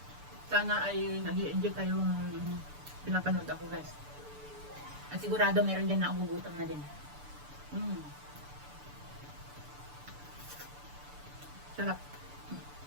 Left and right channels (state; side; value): late; left; 6.9 ms